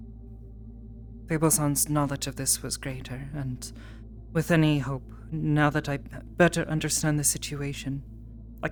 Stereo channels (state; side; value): identical; both; correlation 1.00